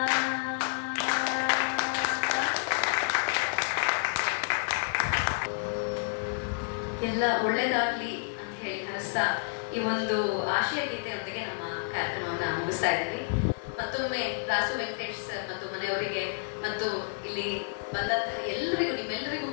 ಎಲ್ಲ ಒಳ್ಳೇದಾಗ್ಲಿ ಅಂತ ಹೇಳಿ ಹರಿಸ್ತಾ ಈ ಒಂದು ಆಶಯ ಗೀತೆಯೊಂದಿಗೆ ನಮ್ಮ ಕಾರ್ಯಕ್ರಮವನ್ನ ಮುಗಿಸ್ತಾ ಇದ್ದೀವಿ. ಮತ್ತೊಮ್ಮೆ ರಾಸು ವೆಂಕಟೇಶ್ ಸರ್ ಮತ್ತು ಮನೆಯವರಿಗೆ ಮತ್ತು ಇಲ್ಲಿ ಬಂದಂತಹ ಎಲ್ಲರಿಗೂ, ನಿಮ್ಮೆಲ್ಲರಿಗೂ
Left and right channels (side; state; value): right; silent; 58 dB below the other